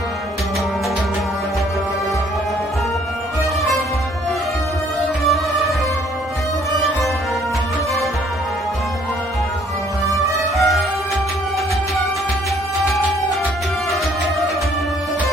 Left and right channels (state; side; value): normal; both; correlation 0.61